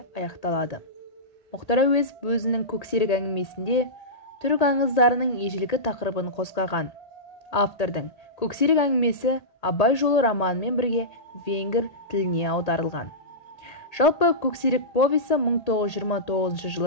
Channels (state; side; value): late; right; 1.8 ms